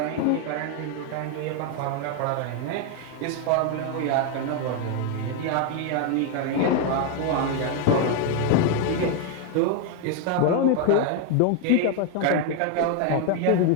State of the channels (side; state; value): both; different; correlation 0.01